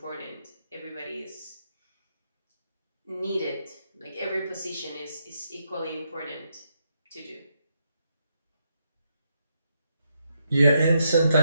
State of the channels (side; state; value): both; inverted; correlation -0.79